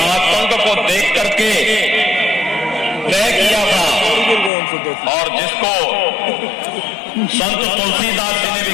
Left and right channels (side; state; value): right; drops out; at 4.5 s